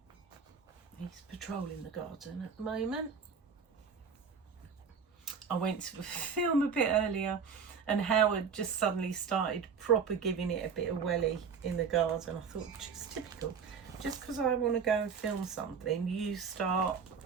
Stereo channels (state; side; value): quieter; left; 6.2 dB